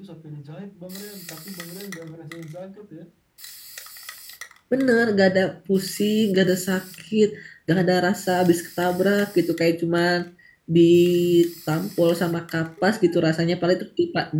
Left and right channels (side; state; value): both; identical; correlation 1.00